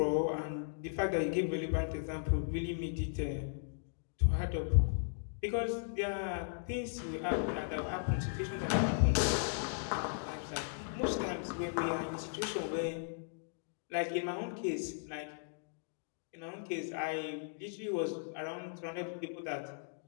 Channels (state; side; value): silent; right; digital silence